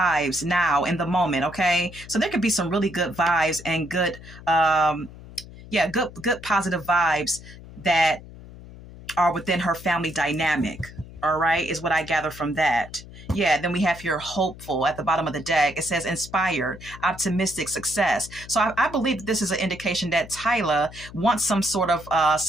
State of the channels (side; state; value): left; noise; hum, 17 dB below the sound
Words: now in the moment. Okay, so there could be some really good vibes and good positive vibes that are within her family dynamic. All right, is what I gather from that. Yeah, then we have here hopeful at the bottom of the deck. It says inspired, optimistic, success. So I believe that this is an indication that Tyla wants some sort of